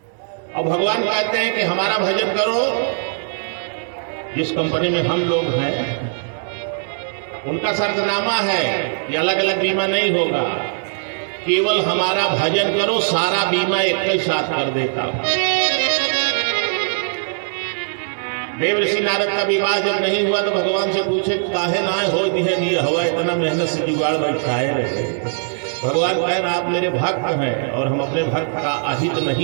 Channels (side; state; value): left; silent; digital silence